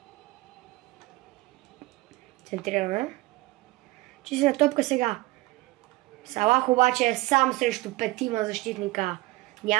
Центрираме. Чистена топка сега. Салах обаче е сам срещу петима защитника.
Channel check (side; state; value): left; quieter; 20.0 dB